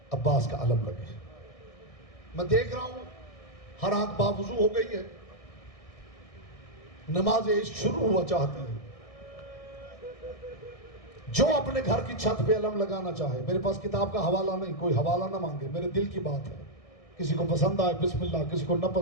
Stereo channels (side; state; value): right; late; 1.6 ms